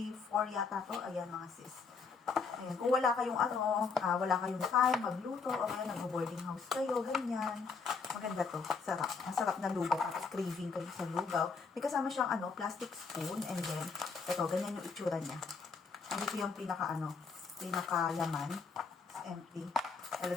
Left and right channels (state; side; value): quieter; right; 5.0 dB